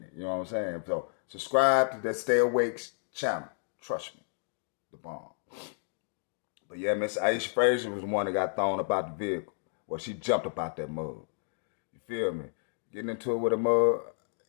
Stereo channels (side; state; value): right; silent; digital silence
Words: it. You know what I'm saying? So subscribe to that Stay Awake channel. Trust me. The bomb. But yeah, Miss Aisha Frazier was the one that got thrown about the vehicle. Well, she jumped about that mud. You feel me? Getting into it with a mud,